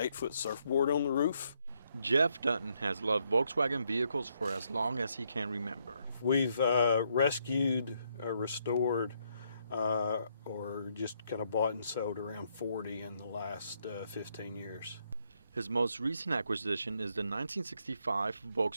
surfboard on the roof. Jeff Dutton has loved Volkswagen vehicles for as long as he can remember. We've rescued, restored, or just kind of bought and sold around 40 in the last 15 years. His most recent acquisition is the 1965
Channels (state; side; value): inverted; both; correlation -0.75